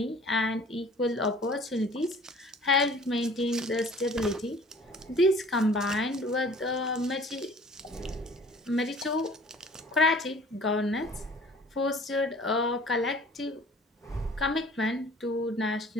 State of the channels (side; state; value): both; normal; correlation 0.49